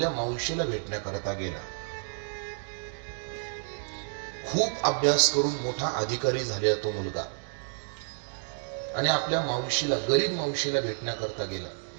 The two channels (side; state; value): left; silent; digital silence